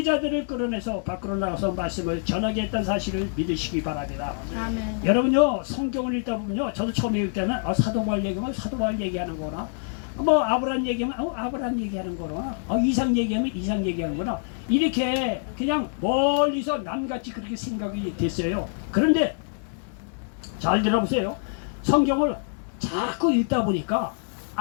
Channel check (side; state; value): right; silent; digital silence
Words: 끌어내서 밖으로 나가서 말씀을 전하게 했다는 사실을 믿으시기 바랍니다. 아멘. 여러분요 성경을 읽다 보면요 저도 처음에 읽을 때는 사도 바울 얘기하면 사도 바울 얘기하는 거나 뭐 아브라함 얘기하면 아브라함 얘기하는 거나 이상 얘기하면 이상 얘기하는 거나 이렇게 그냥 멀리서 남같이 그렇게 생각이 됐어요. 그런데 잘 들어보세요. 성경을 자꾸 읽다 보니까